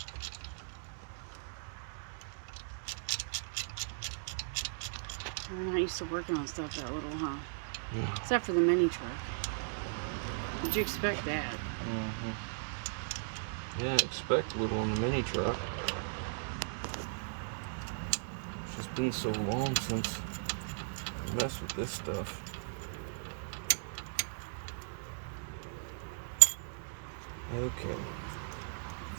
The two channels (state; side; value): silent; left; digital silence